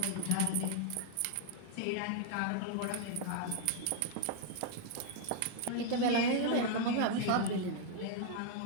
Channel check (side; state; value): both; different; correlation 0.00